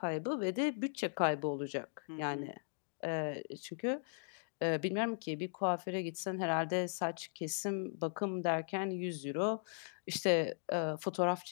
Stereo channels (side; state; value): right; silent; digital silence